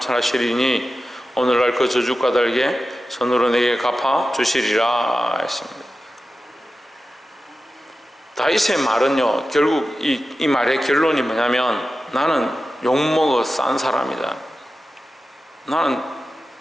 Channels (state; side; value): normal; both; correlation 0.93